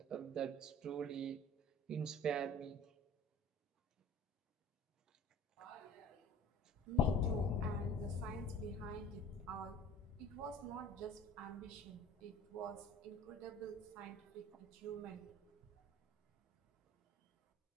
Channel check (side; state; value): both; normal; correlation 0.45